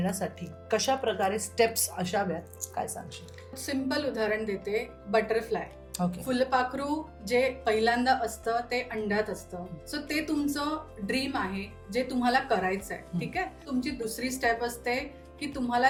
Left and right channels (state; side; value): identical; both; correlation 1.00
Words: कशा प्रकारे स्टेप्स असाव्यात, काय सांगशील? सिंपल उदाहरण देते, बटरफ्लाय. ओके. फुलपाखरू जे पहिल्यांदा असतं ते अंड्यात असतं. सो ते तुमचं ड्रीम आहे, जे तुम्हाला करायचं आहे. ठीक आहे. तुमची दुसरी स्टेप असते की तुम्हाला